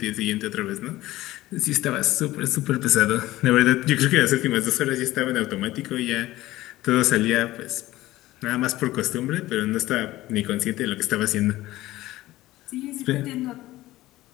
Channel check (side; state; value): right; quieter; 16.8 dB